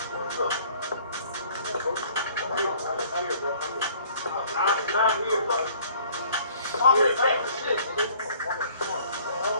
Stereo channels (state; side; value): inverted; both; correlation -0.55